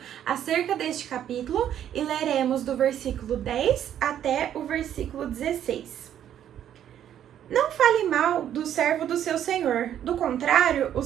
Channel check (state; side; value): quieter; left; 10.4 dB